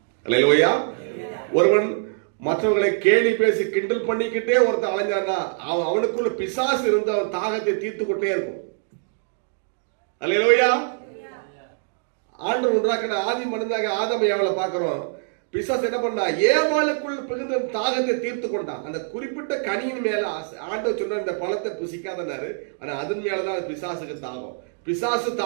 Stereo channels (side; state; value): left; silent; digital silence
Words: அல்லேலூயா. ஒருவன் மற்றவர்களை கேலி பேசி கிண்டல் பண்ணிக்கிட்டே ஒருத்தன் அலைஞ்சான்னா அவனுக்குள்ள பிசாசு இருந்து அவன் தாகத்தை தீர்த்து கொண்டே இருக்கும். அல்லேலூயா. ஆண்டவர் உண்டாக்கின ஆதி மனிதனாக ஆதாம் ஏவாளை பார்க்கிறோம். பிசாசு என்ன பண்ணா, ஏவாளுக்குள் பிகுந்த தாகத்தை தீர்த்து கொண்டான். அந்த குறிப்பிட்ட கனியின் மேல ஆண்டவர் சொன்ன இந்த பழத்தை புசிக்காதனாரு, ஆனா அதன் மேலதான் பிசாசுக்கு தாகம். பிசாசு